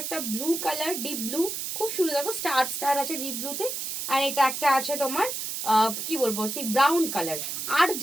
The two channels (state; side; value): noise; right; hiss, 4 dB below the sound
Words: একটা ব্লু কালার, ডিপ ব্লু, খুব সুন্দর। দেখো স্টার স্টার আছে ডিপ ব্লুতে। আর এটা একটা আছে তোমার কি বলবো সেই ব্রাউন কালার। আর